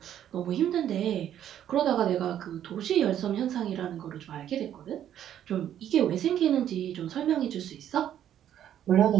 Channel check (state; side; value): quieter; left; 10.6 dB